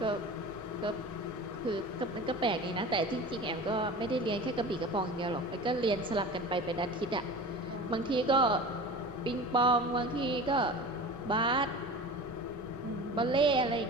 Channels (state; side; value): normal; both; correlation 0.36